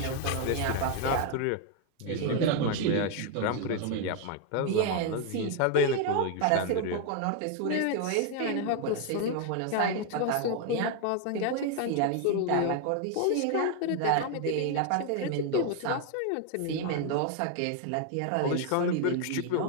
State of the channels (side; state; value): both; different; correlation 0.00